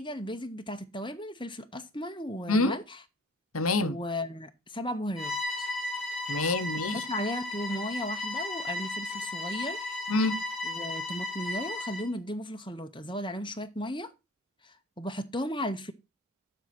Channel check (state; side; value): normal; both; correlation 0.47